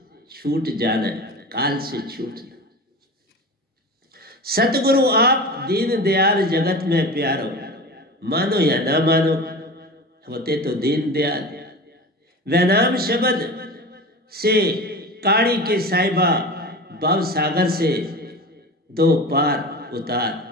छूट जाना है, काल से छूटना। सतगुरु आप दीन दयाल जगत में प्यारो, मानो या ना मानो, होते तो दीन दयाल। वैनाम शब्द से काड़ी के साहिबा, भव सागर से 2 पार उतार।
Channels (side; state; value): both; normal; correlation 0.32